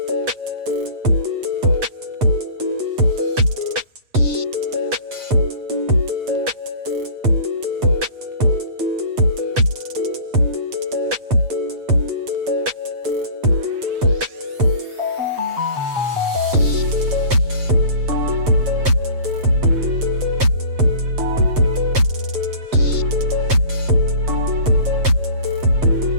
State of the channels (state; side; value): late; left; 7.9 ms